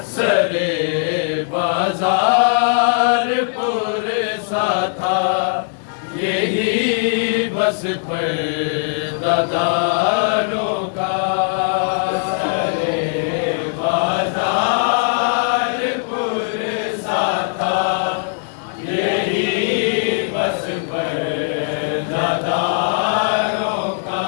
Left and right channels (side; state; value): right; silent; digital silence